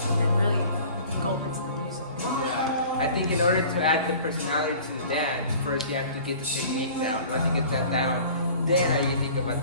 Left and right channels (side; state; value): both; inverted; correlation -0.46